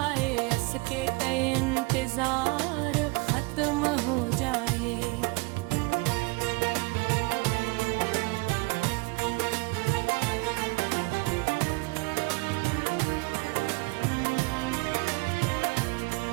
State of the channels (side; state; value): left; quieter; 26.4 dB